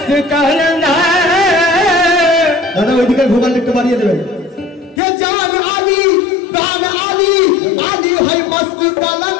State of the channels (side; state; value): right; drops out; at 5.0 s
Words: কালান্দারি দাদা ওইদিকে ভোগাল একটু বাড়িয়ে দেবেন কে জান আলী প্রাণ আলী আলী হয় মস্ত